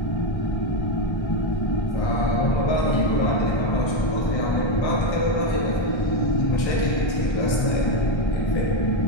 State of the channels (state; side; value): late; right; 1.3 ms